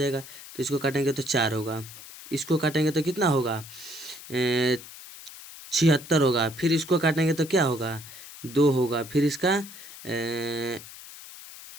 तो इसको काटेंगे तो 4 होगा, इसको काटेंगे तो कितना होगा 76 होगा, फिर इसको काटेंगे तो क्या होगा 2 होगा, फिर इसका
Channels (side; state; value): left; noise; hiss, 16 dB below the sound